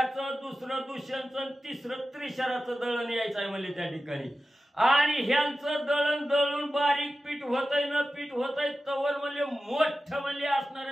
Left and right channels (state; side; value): normal; both; correlation 0.94